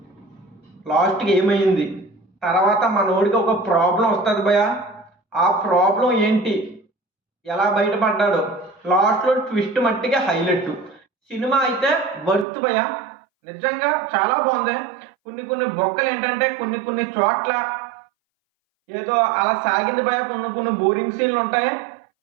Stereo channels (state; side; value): drops out; left; at 12.5 s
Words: లాస్ట్కి ఏమైంది, తర్వాత మనోడికి ఒక ప్రాబ్లం వస్తుంది భయ. ఆ ప్రాబ్లం ఏంటి, ఎలా బయటపడ్డాడు, లాస్ట్లో ట్విస్ట్ మట్టిగా హైలైట్. సినిమా అయితే వర్త్ భయ, నిజంగా చాలా బాగుంది. కొన్ని బొక్కలు ఏంటంటే కొన్ని చోట్ల ఏదో అలా సాగింది భయ. కొన్ని బోరింగ్ సీన్లు ఉంటాయి.